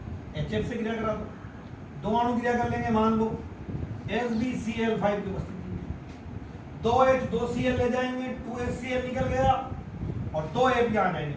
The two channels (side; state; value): both; identical; correlation 1.00